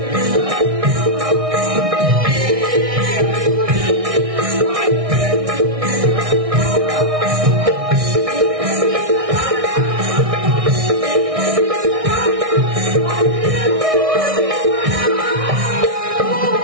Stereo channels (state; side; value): late; left; 1.6 ms